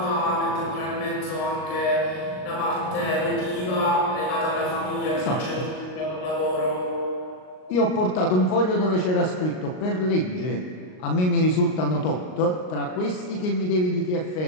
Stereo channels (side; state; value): right; late; 38 ms